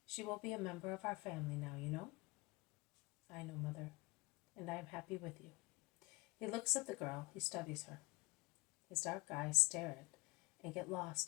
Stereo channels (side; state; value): right; quieter; 24.7 dB